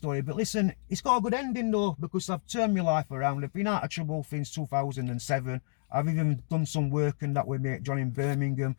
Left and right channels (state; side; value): silent; right; digital silence